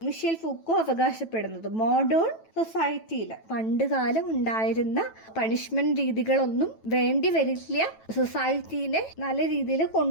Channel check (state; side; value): late; right; 9.1 ms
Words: മിഷേൽ ഫൂക്കോ അവകാശപ്പെടുന്നത്. മോഡേൺ സൊസൈറ്റിയിൽ പണ്ട് കാലം ഉണ്ടായിരുന്ന പണിഷ്മെന്റ് രീതികളൊന്നും വേണ്ടി വരില്ല സൊസൈറ്റീനെ നല്ല രീതിയിൽ